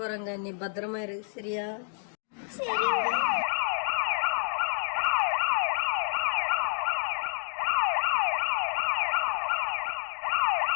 நீ பத்திரமா இரு, சரியா? சரிங்க.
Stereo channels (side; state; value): right; silent; digital silence